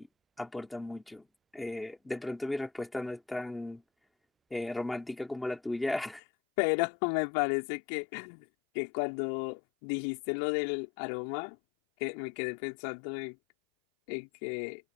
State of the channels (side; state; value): right; drops out; at 6.2 s